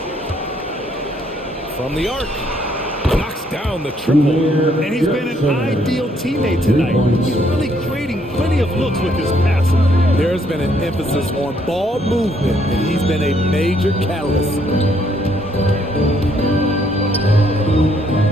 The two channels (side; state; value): both; normal; correlation 0.69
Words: From the arc. Knocks down the triple. And he's been an ideal teammate tonight. He's really creating plenty of looks with his passing. There's been an emphasis on ball movement, and he's been a major catalyst.